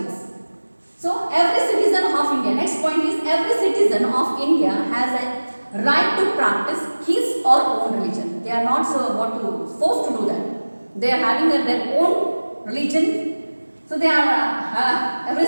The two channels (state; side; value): inverted; both; correlation -1.00